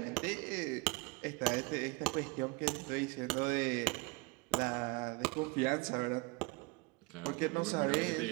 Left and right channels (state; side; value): quieter; left; 26.1 dB